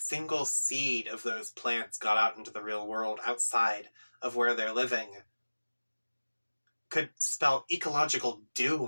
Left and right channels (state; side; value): inverted; both; correlation -1.00